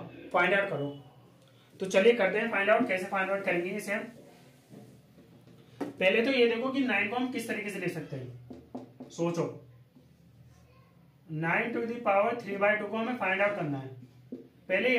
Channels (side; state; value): both; identical; correlation 1.00